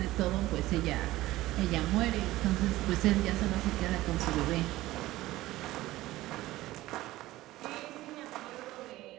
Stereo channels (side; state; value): left; quieter; 17.0 dB